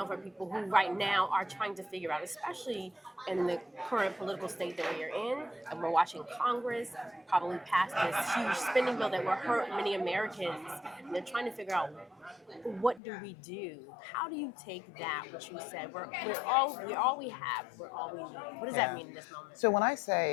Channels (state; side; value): drops out; right; at 13.0 s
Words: for people who right now are trying to figure out, especially in the current political state that we are in, and we're watching Congress probably pass this huge spending bill that will hurt many Americans, and they're trying to figure out, what do we do? How do you take that, what you said, we're all we have, we're all we need? What does that mean in this moment? So when I